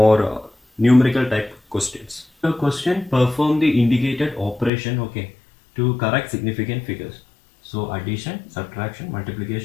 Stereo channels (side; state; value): right; drops out; at 4.7 s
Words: numerical type questions. The question: perform the indicated operation, okay, to correct significant figures. So addition, subtraction,